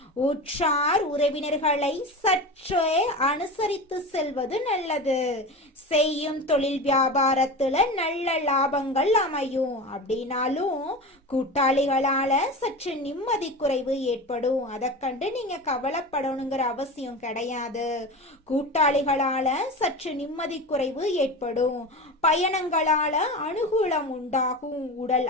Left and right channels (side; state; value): both; normal; correlation 0.28